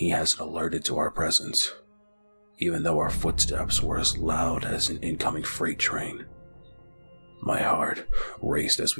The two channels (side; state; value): both; inverted; correlation -1.00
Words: hasn't alerted to our presence, even though our footsteps were as loud as an incoming freight train. My heart raced as